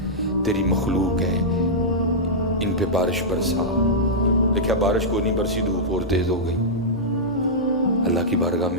تیری مخلوق ہے، ان پہ بارش برسا. دیکھا بارش کو نہیں برسی، دھوپ اور تیز ہو گئی. اللہ کی بارگاہ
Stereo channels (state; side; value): noise; left; hum, 19 dB below the sound